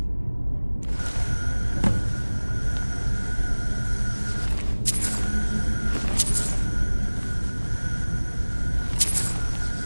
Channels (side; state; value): both; inverted; correlation -1.00